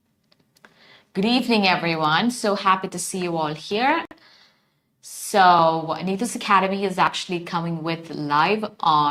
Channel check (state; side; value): identical; both; correlation 1.00